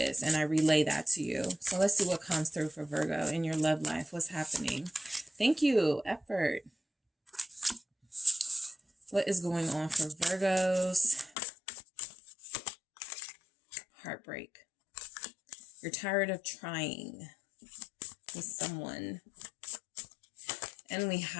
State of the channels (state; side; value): drops out; right; at 11.4 s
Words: and I relay that to you. So let's see what comes through for Virgo in your love life. What's happening? Thank you. Effort. What is going on for Virgos? Heartbreak. You're tired of trying with someone. And we